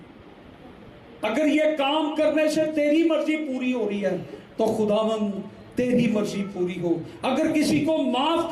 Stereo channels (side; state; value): both; identical; correlation 1.00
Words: اگر یہ کام کرنے سے تیری مرضی پوری ہو رہی ہے تو خداوند تیری مرضی پوری ہو۔ اگر کسی کو معاف